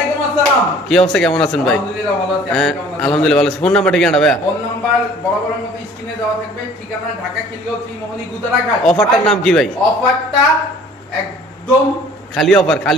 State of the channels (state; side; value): normal; both; correlation 0.51